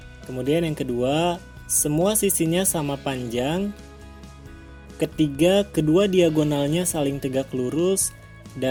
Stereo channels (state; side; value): identical; both; correlation 1.00